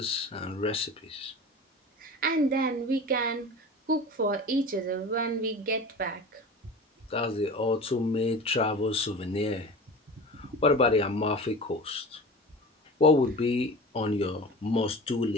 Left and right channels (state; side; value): normal; both; correlation 0.35